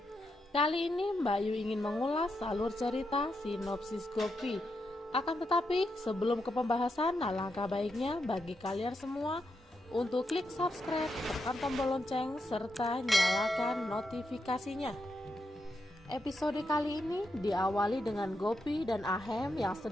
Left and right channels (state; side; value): normal; both; correlation 0.84